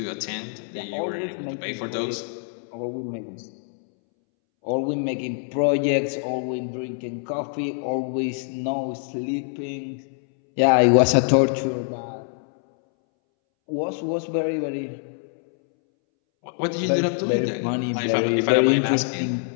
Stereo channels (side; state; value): right; silent; 62 dB below the other